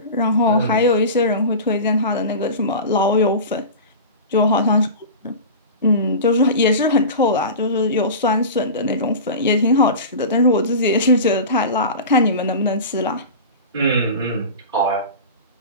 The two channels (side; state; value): both; inverted; correlation -0.30